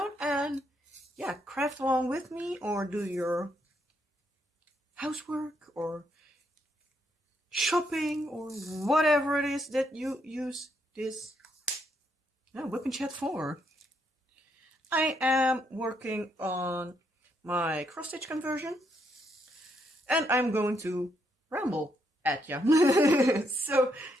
and yeah, craft along with me or do your housework or shopping or whatever it is that you use this WIP and Chat for. I am working on my cross-stitch conversion and I'm going to ramble at you. So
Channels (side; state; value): both; normal; correlation 0.76